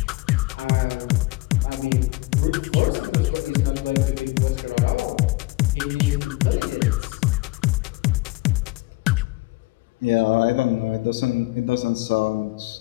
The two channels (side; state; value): right; quieter; 21.4 dB